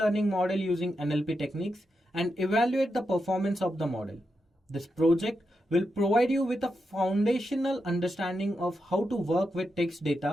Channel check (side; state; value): both; normal; correlation 0.86